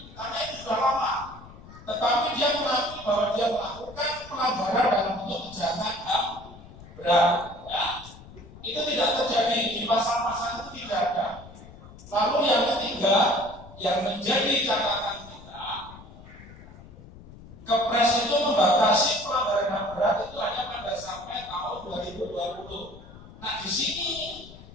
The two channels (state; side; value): noise; left; rumble, 18 dB below the sound